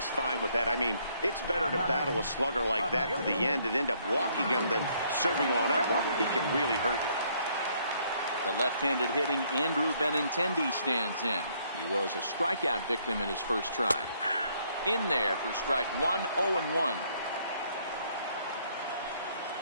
fine with that. I mean, it's better to battle a slugger like that to the end and end up walking him than serving one up, or he can really hurt you. The left-handed hitting Andrew Benintendi stands in. He was a strikeout victim in his first try. In there for strike 1, 0-1.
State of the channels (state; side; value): inverted; both; correlation -0.67